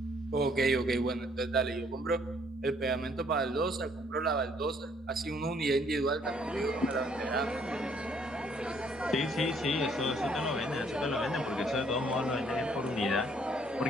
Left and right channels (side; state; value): both; normal; correlation 0.65